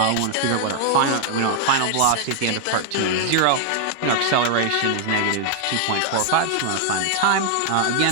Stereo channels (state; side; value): different; both; correlation 0.00